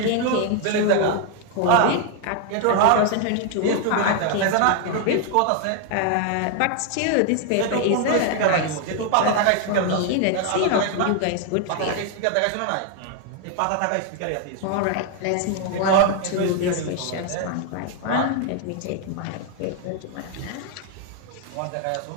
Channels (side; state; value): both; different; correlation 0.00